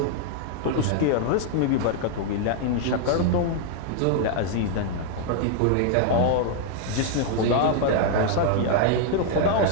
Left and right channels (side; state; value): both; different; correlation 0.00